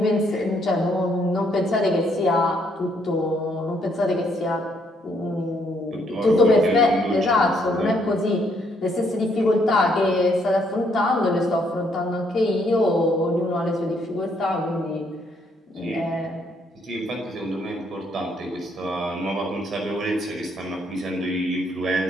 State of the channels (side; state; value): both; normal; correlation 0.70